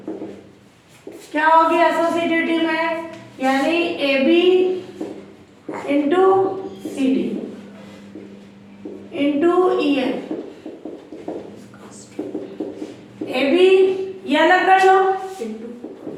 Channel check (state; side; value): identical; both; correlation 1.00